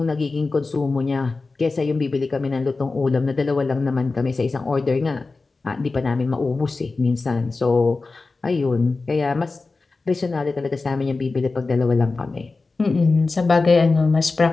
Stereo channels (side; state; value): right; quieter; 3.8 dB